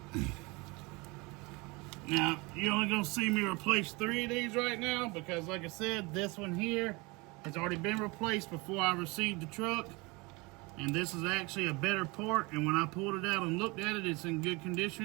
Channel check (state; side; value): quieter; left; 25.8 dB